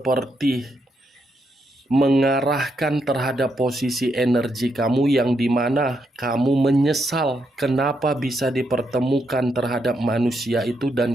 mengarahkan terhadap posisi energi kamu yang dimana kamu menyesal kenapa bisa dipertemukan terhadap manusia itu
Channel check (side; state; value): both; normal; correlation 0.80